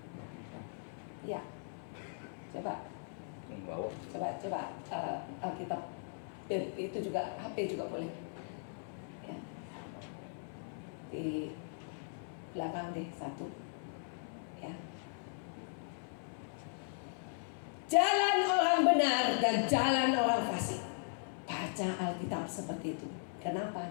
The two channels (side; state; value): right; silent; 52 dB below the other